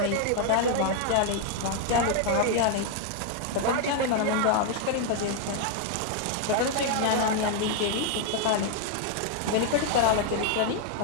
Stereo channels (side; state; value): both; different; correlation 0.00